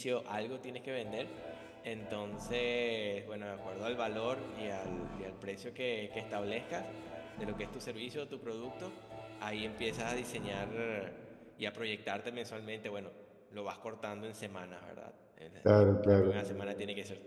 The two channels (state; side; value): identical; both; correlation 1.00